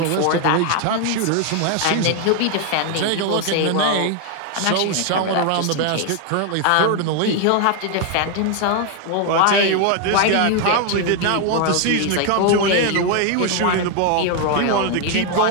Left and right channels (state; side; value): different; both; correlation 0.01